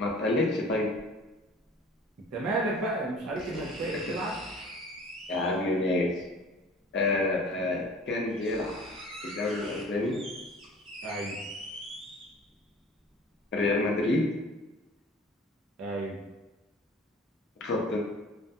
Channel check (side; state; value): both; normal; correlation 0.45